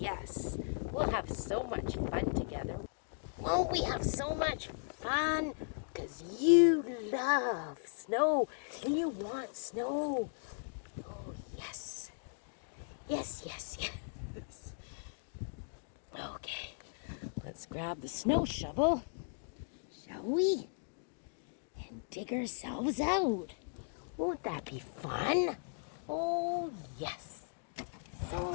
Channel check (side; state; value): right; silent; digital silence